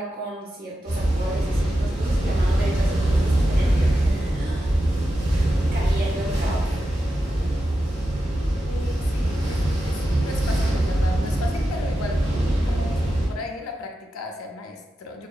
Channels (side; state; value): both; normal; correlation 0.90